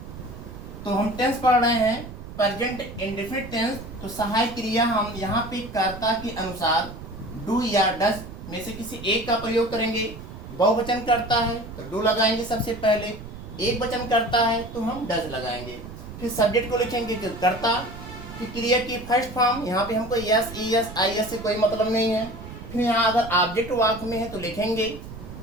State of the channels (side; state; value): right; noise; rumble, 13 dB below the sound